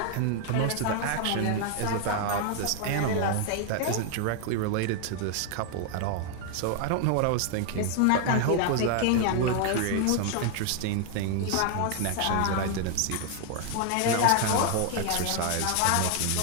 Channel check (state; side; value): different; both; correlation 0.00